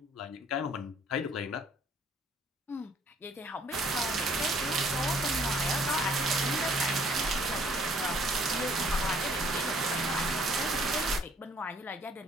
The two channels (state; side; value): normal; both; correlation 0.60